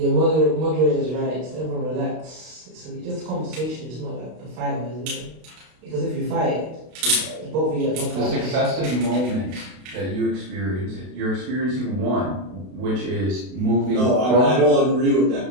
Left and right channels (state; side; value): late; left; 32 ms